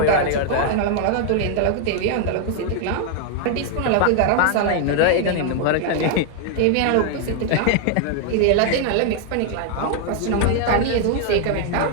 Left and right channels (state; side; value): different; both; correlation 0.00